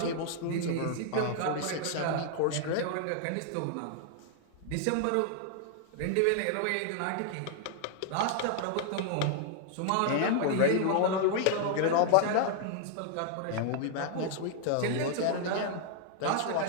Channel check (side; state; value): both; different; correlation 0.00